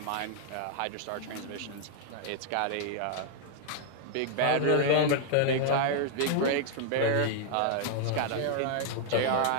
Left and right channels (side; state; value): both; different; correlation 0.00